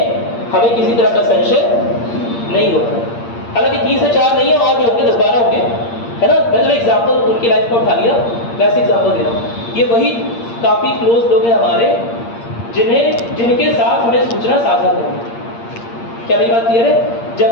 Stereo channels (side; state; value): right; late; 8.6 ms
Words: हमें किसी तरह का संशय नहीं होता। हालांकि 3 से 4 नहीं है, और भी होंगे, 10-12 होंगे, है ना? मैंने एग्जाम्पल उनकी लाइफ को उठा लिया, वैसे एग्जाम्पल दे रहा हूँ। ये वही काफ़ी क्लोज लोग हैं हमारे जिनके साथ हमें सूचना साझा करनी है। क्या मेरी बात क्लियर है?